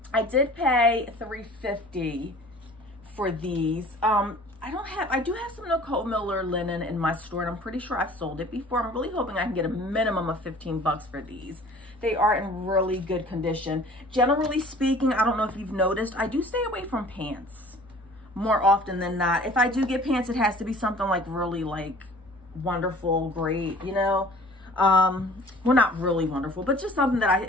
I did pay $3.50 for these. I do have some Nicole Miller linen in my store, and I'm pretty sure I've sold it before. I'm really hoping I can get a minimum of 15 bucks for these. They are in really good condition. Generally speaking, I don't know if you've noticed, I do stay away from pants more often than not. If I do get pants, it has to be something like really like wonderful, great, you know. Well, not really wonderful, but just something that I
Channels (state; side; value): normal; both; correlation 0.48